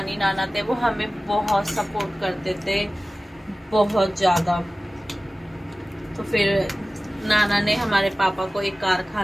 नाना थे वो हमें बहुत सपोर्ट करते थे, बहुत ज़्यादा। तो फिर नाना ने हमारे पापा को एक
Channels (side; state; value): both; normal; correlation 0.97